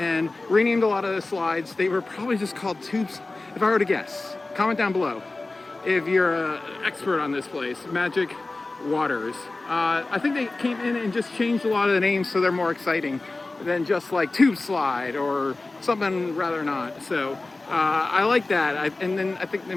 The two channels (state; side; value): quieter; right; 3.2 dB